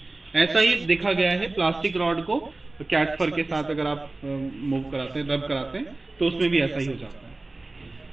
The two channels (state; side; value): quieter; left; 3.1 dB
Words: ऐसा ही देखा गया है प्लास्टिक रॉड को कैट फर के साथ अगर आप मूव कराते हैं, रब कराते हैं, तो उसमें भी ऐसा ही हो जाता है।